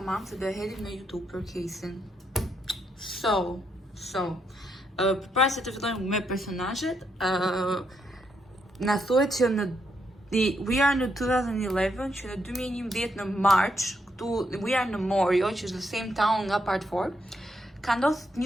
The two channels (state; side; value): normal; both; correlation 0.78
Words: se do e hedhim në YouTube për casein. Përpara se të fillojmë me personazhet, na thuhet që we are në 2011, që në 2011 në March, këtu we are në Morio, që është the same town nga part 4. Ka ndodhur